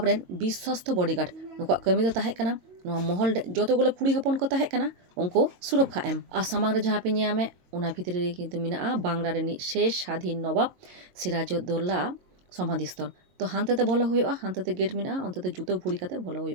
ᱨᱮᱱ ᱵᱤᱥᱥᱚᱥᱛᱚ ᱵᱚᱰᱤᱜᱟর্ড। ᱱᱩᱠᱩᱣᱟᱜ ᱠᱟᱹᱢᱤ ᱫᱚ ᱛᱟᱦᱮᱸ ᱠᱟᱱᱟ ᱱᱚᱣᱟ ᱢᱚᱦᱚᱞ ᱨᱮ ᱡᱚᱛᱚᱜᱩলো ᱠᱩᱲᱤ ᱦᱚᱯᱚᱱ ᱠᱚ ᱛᱟᱦᱮᱸ ᱠᱟᱱᱟ ᱩᱱᱠᱩ ᱥᱩᱨᱚᱠᱠᱷᱟ ᱮᱢ। ᱟᱨ ᱥᱟᱢᱟᱝ ᱨᱮ ᱡᱟᱦᱟᱸ ᱯᱮ ᱧᱟᱢᱮ ᱚᱱᱟ ᱵᱷᱤᱛᱨᱤ ᱨᱮ ᱠᱤᱱᱛᱩ ᱢᱮᱱᱟᱜᱼᱟ ᱵᱟᱝᱞᱟ ᱨᱤᱱᱤᱡ শেষ স্বাধীন নবাব সিরাজউদ্দৌলা সমাধি স্থল। তো হান্তেতে বলো হুᱭᱩᱜᱼᱟ, হান্তেতে গেট মেᱱᱟᱜᱼᱟ, ᱚᱱᱛᱮᱛᱮ ᱡᱩᱛᱟᱹ ᱵᱷᱩᱲᱤ ᱠᱟᱛᱮ ᱵᱚᱞᱚ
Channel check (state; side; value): late; left; 22 ms